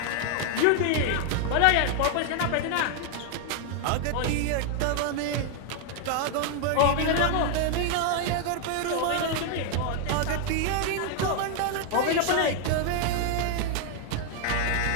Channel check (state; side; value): different; both; correlation 0.00